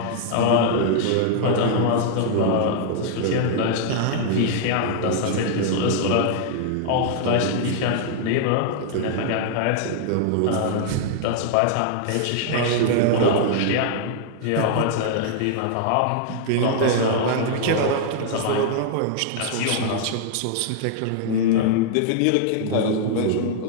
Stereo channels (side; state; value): both; different; correlation -0.01